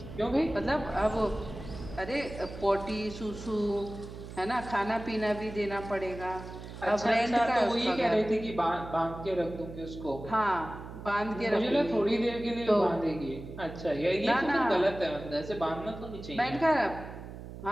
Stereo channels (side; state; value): right; noise; hum, 12 dB below the sound